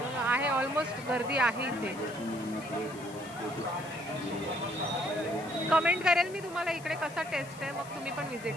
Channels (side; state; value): left; noise; hiss, 19 dB below the sound